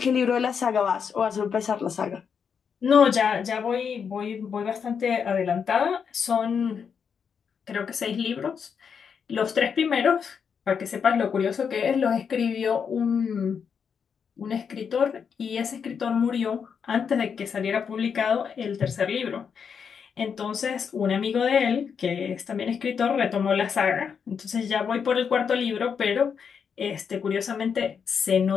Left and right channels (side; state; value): right; quieter; 6.7 dB